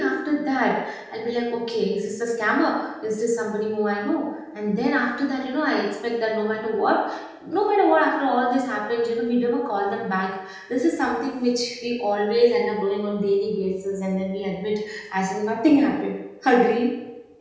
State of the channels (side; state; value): both; identical; correlation 1.00